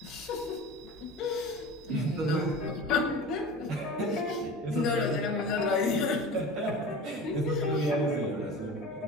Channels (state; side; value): normal; both; correlation 0.35